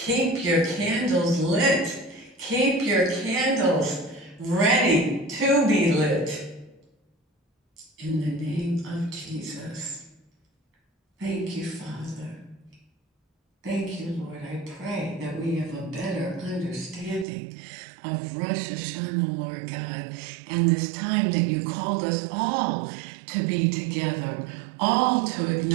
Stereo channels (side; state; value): left; drops out; at 17.2 s